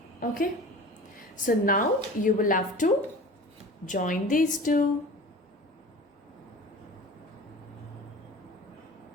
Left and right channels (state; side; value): normal; both; correlation 0.39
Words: Okay, so now you will have to join these two.